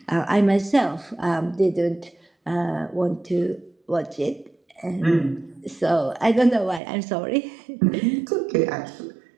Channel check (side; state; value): left; drops out; at 6.8 s